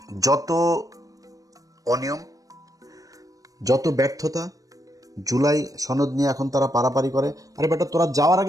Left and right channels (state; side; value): late; left; 0.17 ms